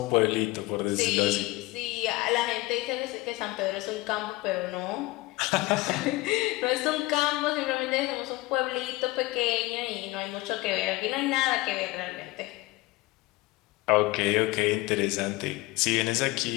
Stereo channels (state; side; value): quieter; right; 20.6 dB